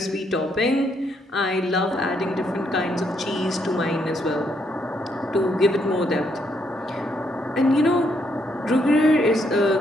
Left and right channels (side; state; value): both; normal; correlation 0.74